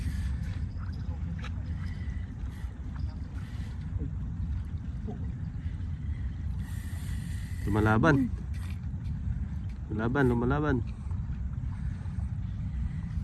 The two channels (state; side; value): identical; both; correlation 1.00